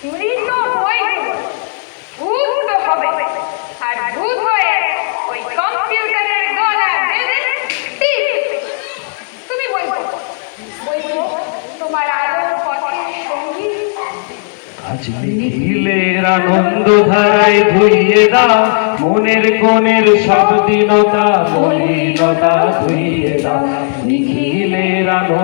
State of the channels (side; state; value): right; silent; digital silence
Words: মৃত বইগুলো ভূত তো হবে, আর ভূত হয়ে ওই কম্পিউটারের গলা বেঁধে তুমি বই পড়ো। আজ নিখিলের আনন্দ ধারায় ধুইয়ে দাও মনের কোণের সব দীনতা মলিনতা ধুইয়ে দাও নিখিলের